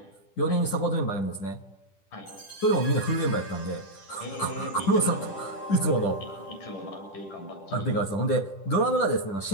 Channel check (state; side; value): late; right; 10 ms